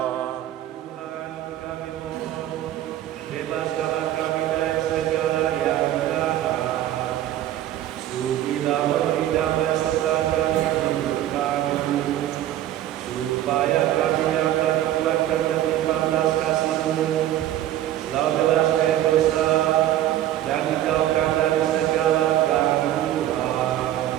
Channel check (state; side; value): quieter; left; 12.8 dB